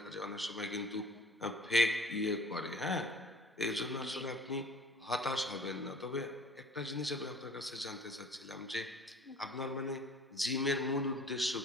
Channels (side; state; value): both; normal; correlation 0.49